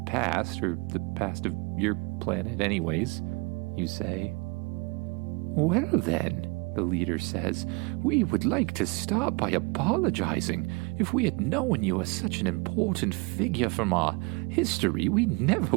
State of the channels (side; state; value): left; quieter; 28.4 dB